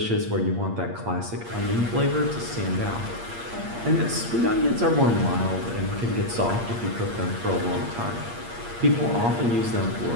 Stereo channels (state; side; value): late; left; 8.6 ms